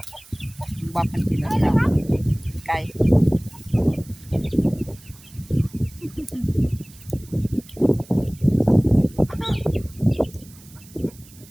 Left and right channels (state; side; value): noise; right; hiss, 23 dB below the sound